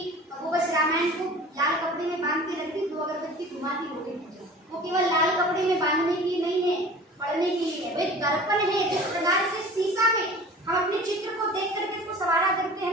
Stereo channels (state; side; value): normal; both; correlation 0.42